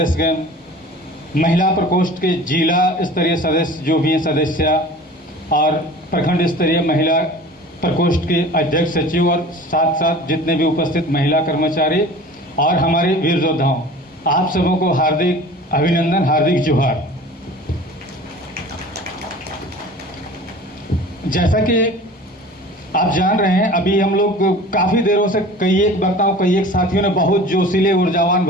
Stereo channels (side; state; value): both; normal; correlation 0.41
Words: महिला प्रकोष्ठ के जिला स्तरीय सदस्य जो भी हैं सदस्य और प्रखंड स्तरीय महिला प्रकोष्ठ के अध्यक्ष सचिव और साथ साथ जितने भी उपस्थित महिला कर्मचारी और हमारे वीर योद्धाओं, आप सबों को हार्दिक अभिनंदन, हार्दिक जोहार। जैसा कि आप जान रहे हैं, अभी हम लोग काफ़ी देरों से कई एक वक्ताओं, कई एक साथियों ने बहुत जोशीले ऊर्जावान